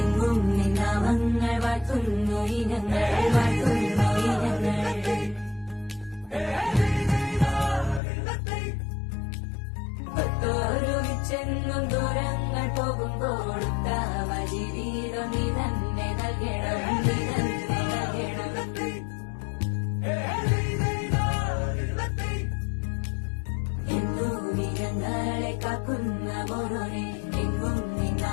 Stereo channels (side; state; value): right; drops out; at 8.0 s